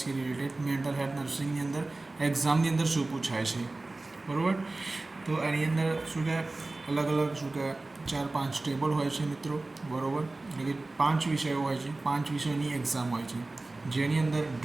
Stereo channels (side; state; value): left; quieter; 3.1 dB